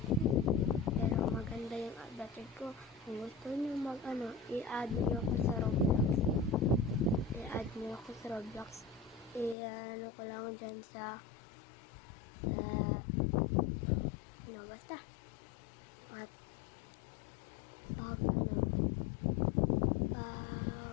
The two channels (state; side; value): drops out; right; at 9.6 s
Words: Pero maganda yung update ko. Kung gusto nyo i-add nyo ako sa Roblox. I-add nyo ako sa Roblox. I-ano ko lang dyan sa basta. At pag